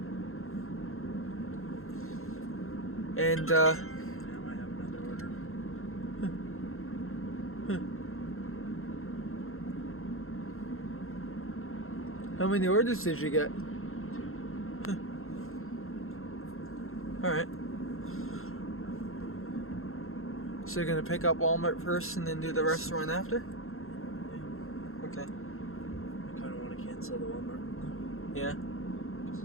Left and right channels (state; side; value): late; right; 0.62 ms